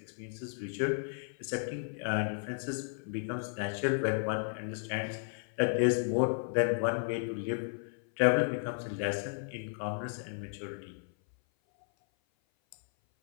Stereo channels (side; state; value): right; silent; 55 dB below the other